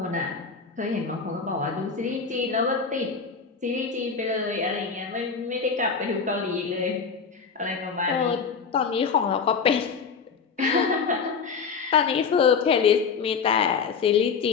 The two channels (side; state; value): right; quieter; 5.7 dB